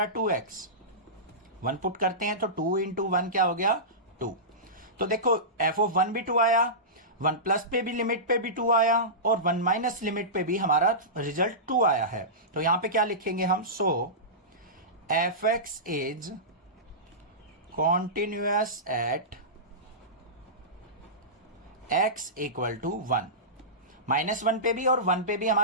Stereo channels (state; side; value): normal; both; correlation -0.19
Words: 2x। 1 पुट करते हैं तो 2 इंटू 1 क्या हो गया, 2। तो देखो एफ ऑफ 1 भी 2 आया, 1 प्लस पे भी लिमिट पे भी 2 आया, और 1 माइनस लिमिट पे भी हमारा रिजल्ट 2 आया है। तो यहां पे क्या लिखेंगे हम, so F x is continuous at x equal to 1। -1 पे भी और 1 पे भी